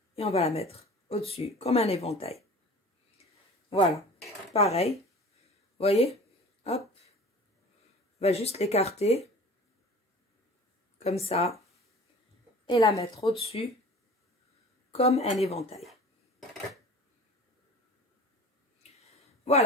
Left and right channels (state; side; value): normal; both; correlation 0.41